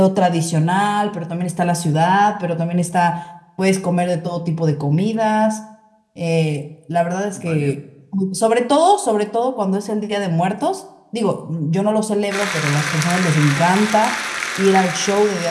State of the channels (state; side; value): identical; both; correlation 1.00